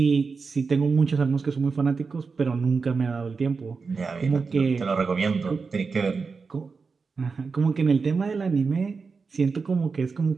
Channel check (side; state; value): left; quieter; 4.8 dB